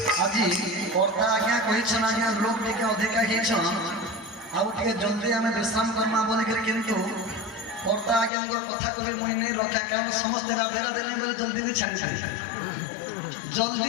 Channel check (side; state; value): right; drops out; at 8.3 s